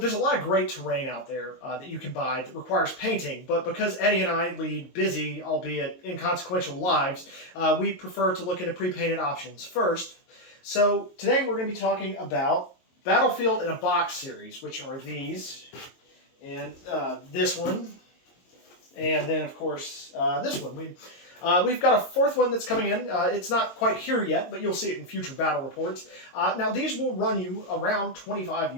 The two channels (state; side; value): late; right; 22 ms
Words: a lot of great terrain out there that you can buy that requires painting, but because Eddie and I lead busy, albeit inconsequential lives, we prefer to look into pre-painted options first. So today we're going to be talking about Battlefield in a Box series, which are these, and this one, and then of course this one. We've got a fourth one that's coming in. It's not quite here yet, but you'll see it in future battle reports. Now these will run you around